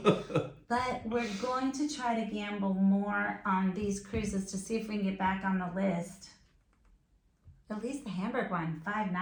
But we're going to try to gamble more on these cruises to see if we can get back on the list. At least the Hamburg one, 5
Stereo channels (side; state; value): both; identical; correlation 1.00